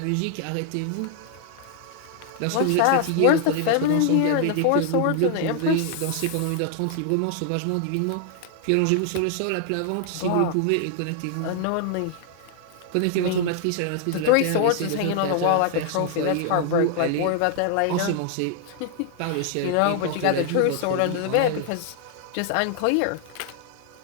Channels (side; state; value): both; different; correlation 0.00